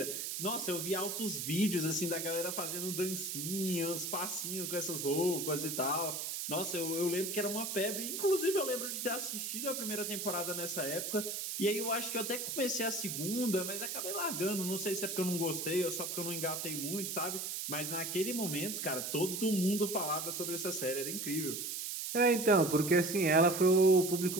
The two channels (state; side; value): noise; right; hiss, 4 dB below the sound